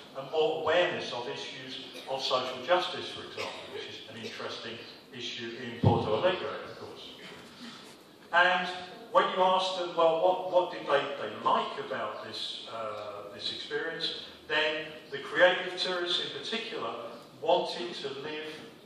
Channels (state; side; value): identical; both; correlation 1.00